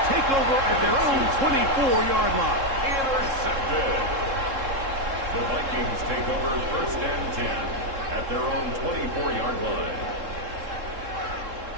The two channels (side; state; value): left; late; 3.7 ms